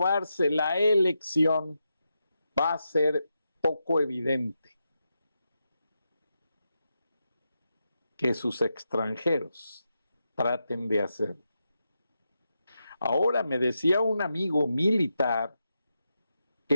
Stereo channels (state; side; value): inverted; both; correlation -0.87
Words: la elección, va a ser poco evidente que sus extranjeros traten de hacerlo. Ahora me decía un amigo militar